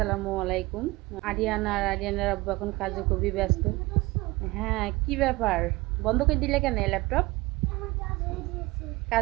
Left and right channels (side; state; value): left; quieter; 21.7 dB